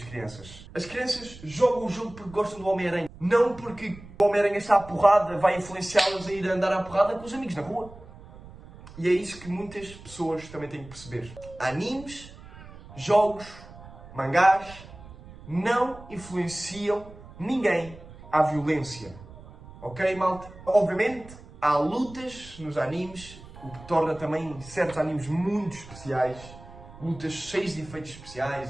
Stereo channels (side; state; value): right; noise; rumble, 18 dB below the sound